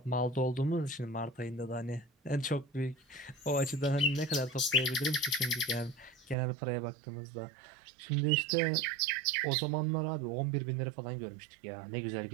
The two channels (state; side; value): drops out; left; at 6.4 s